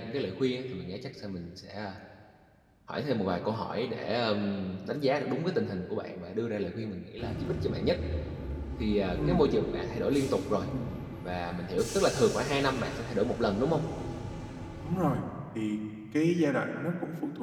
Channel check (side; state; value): both; identical; correlation 1.00